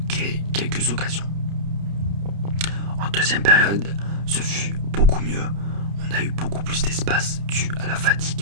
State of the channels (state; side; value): late; left; 30 ms